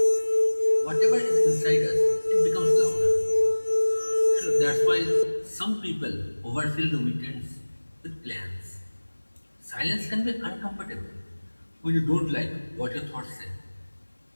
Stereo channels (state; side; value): inverted; both; correlation -1.00